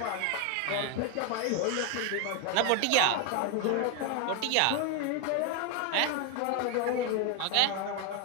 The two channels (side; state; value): both; different; correlation 0.01